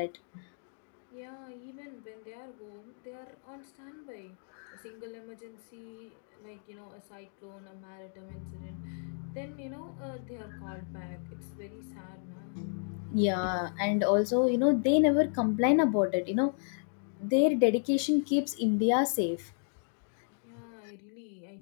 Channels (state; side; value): silent; right; digital silence